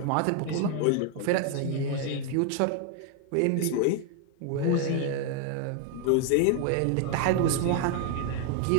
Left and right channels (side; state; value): both; different; correlation 0.01